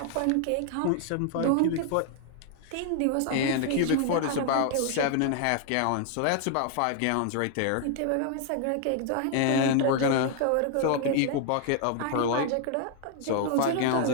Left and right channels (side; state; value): both; different; correlation 0.00